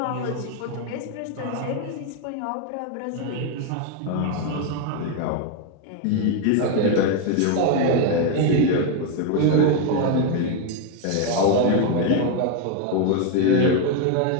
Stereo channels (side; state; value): both; different; correlation 0.01